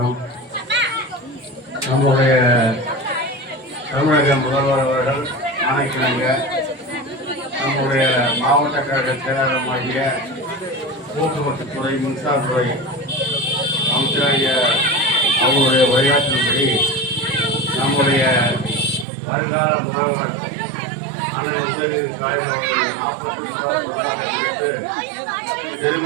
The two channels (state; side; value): drops out; left; at 19.1 s